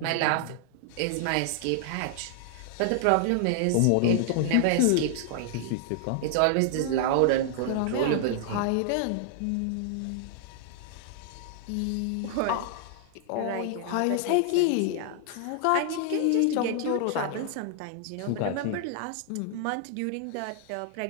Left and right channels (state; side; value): different; both; correlation 0.00